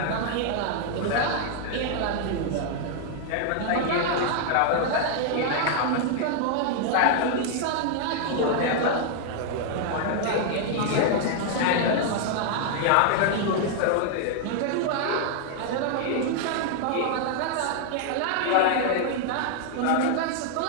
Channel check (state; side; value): different; both; correlation 0.00